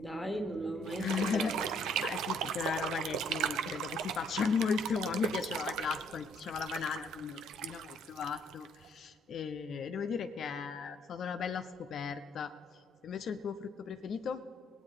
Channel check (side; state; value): both; normal; correlation 0.65